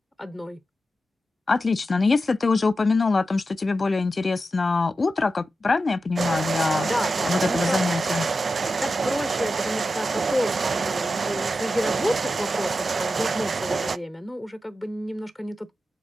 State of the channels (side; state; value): both; normal; correlation 0.91